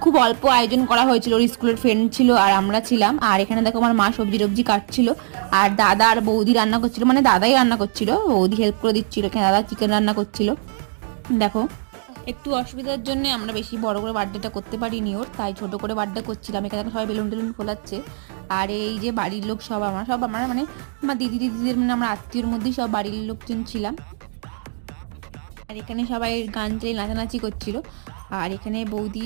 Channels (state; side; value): silent; left; 63 dB below the other